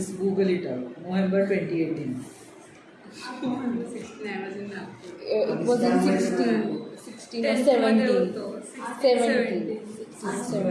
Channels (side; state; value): both; identical; correlation 1.00